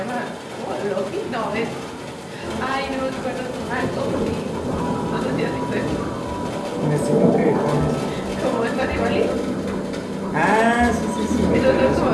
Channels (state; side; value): identical; both; correlation 1.00